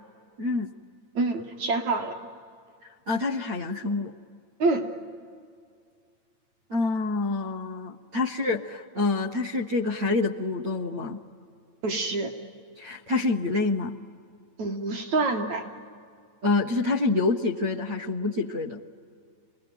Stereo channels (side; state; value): left; late; 9.0 ms